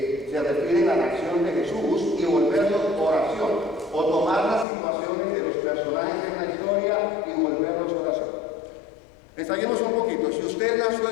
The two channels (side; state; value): right; drops out; at 4.7 s